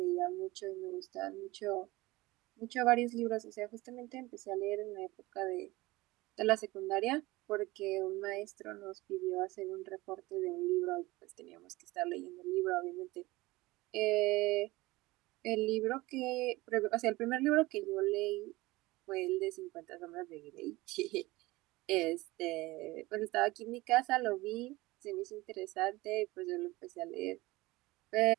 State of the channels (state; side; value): quieter; left; 20.5 dB